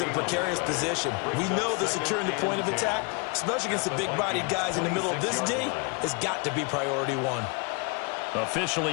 a precarious position. We know that securing the point of attack, especially against the big-bodied guys in the middle of this D, has got to be priority 1. Officially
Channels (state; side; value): quieter; right; 32.4 dB